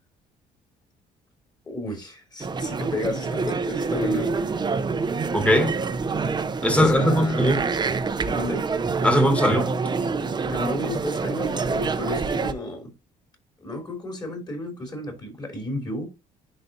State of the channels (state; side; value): normal; both; correlation 0.68